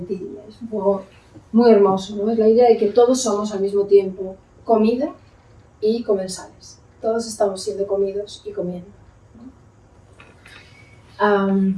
Es un juego muy hermoso, ¿no? Es la idea de que todos somos al mismo tiempo comida y comensales. Todos estamos siendo comidos y comiendo, ¿no?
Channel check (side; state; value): both; identical; correlation 1.00